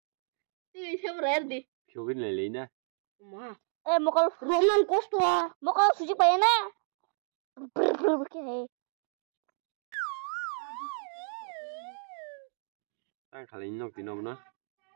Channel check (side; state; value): left; silent; 57 dB below the other